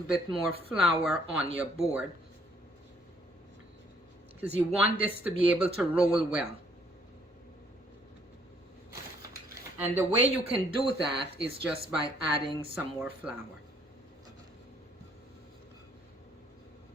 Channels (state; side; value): normal; both; correlation 0.64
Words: more flour on your board, because you want this to be able to roll well. And the way you can do that is just by adding some more flour.